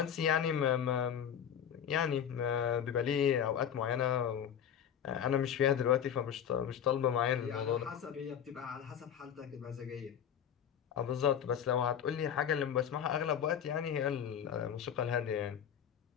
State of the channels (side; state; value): right; quieter; 8.8 dB